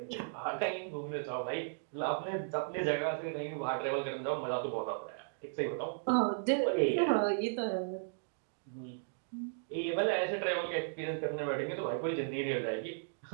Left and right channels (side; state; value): left; silent; digital silence